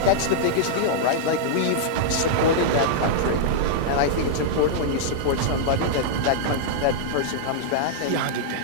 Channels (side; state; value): both; different; correlation -0.02